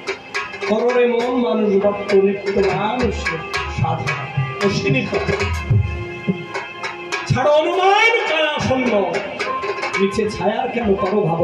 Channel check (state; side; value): identical; both; correlation 1.00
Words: কররে মন মানুষ ভক্ত নিত্য মানুষ সাধনা অশ্বিনী কথা ছাড়ো অনুমান কায়া শূন্য নিচে ছায়ার কেন করো